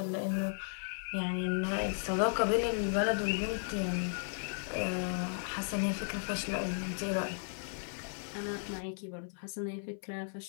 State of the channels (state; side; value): silent; right; 54 dB below the other